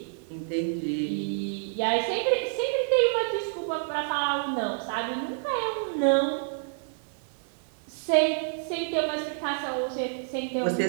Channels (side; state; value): left; silent; 59 dB below the other